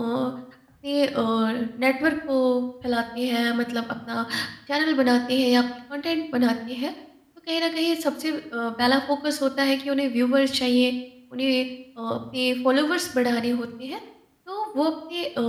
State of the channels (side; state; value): both; identical; correlation 1.00